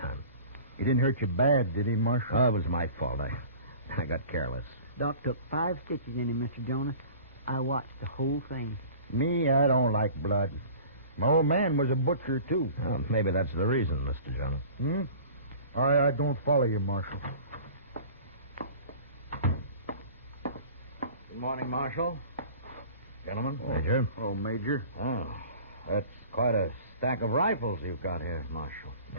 He didn't hurt you bad, did he, Marshal? Oh, it was my fault. I got careless. Doc took 5 stitches in him, Mr. Jonas. I watched the whole thing. Me, I don't like blood. My old man was a butcher, too. Well, maybe that's the reason, Mr. Jonas. I don't follow you, Marshal. Good morning, Marshal. Gentlemen. Major. Oh, Major. Oh, that's quite a stack of rifles you've got here, Marshal.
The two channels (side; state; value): both; inverted; correlation -0.44